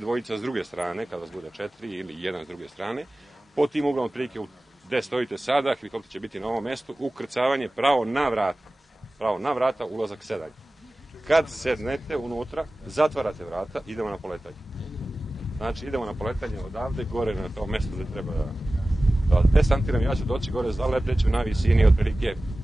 s druge strane, kada vas bude 4 ili jedan s druge strane. Po tim uglom prilike gde stojite sada, helikopter će biti na ovom mestu, ukrcavanje pravo na vrata. Pravo na vrata, ulazak sedanje. Kad sednete unutra, zatvarate vrata, idemo na poletanje. Znači, idemo na poletanje odavde, gore na to mesto gde treba da desantiram. Ja ću doći gore, zaleteću na visini otprilike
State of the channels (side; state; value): both; normal; correlation 0.97